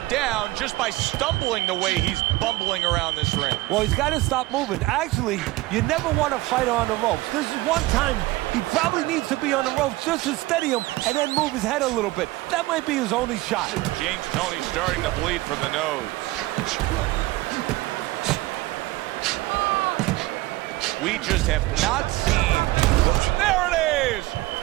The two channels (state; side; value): quieter; left; 19.1 dB